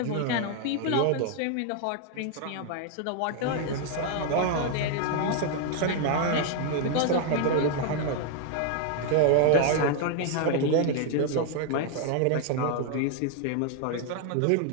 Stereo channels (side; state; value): both; different; correlation 0.00